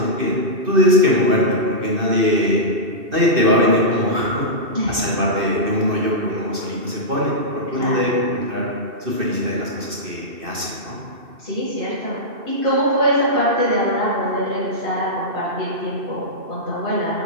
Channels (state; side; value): late; left; 2.6 ms